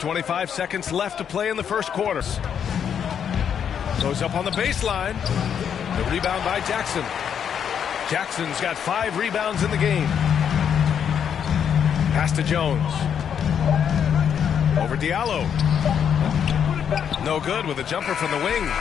seconds left to play in the first quarter. Goes up on the baseline. The rebound by Jackson. Jackson's got 5 rebounds in the game. Pass to Jones. Over Diallo. No good with a jumper from the wing.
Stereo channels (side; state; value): right; quieter; 8.1 dB